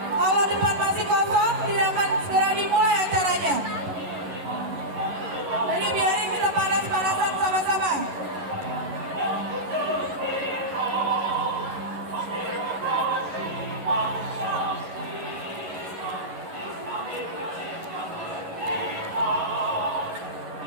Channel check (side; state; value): left; late; 11 ms